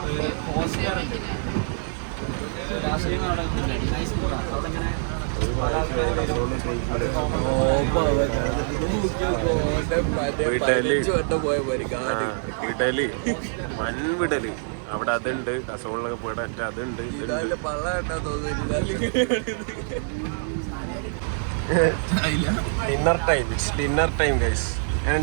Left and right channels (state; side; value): silent; left; digital silence